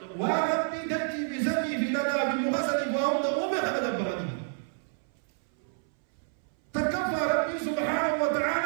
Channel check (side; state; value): left; silent; 59 dB below the other